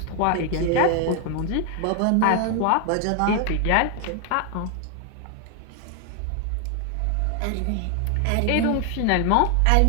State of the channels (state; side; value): different; both; correlation 0.00